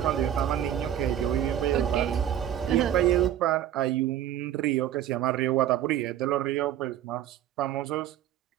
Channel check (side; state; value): left; quieter; 11.1 dB